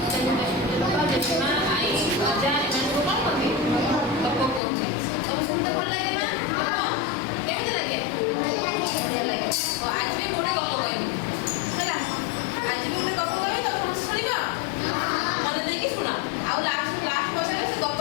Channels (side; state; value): right; drops out; at 4.6 s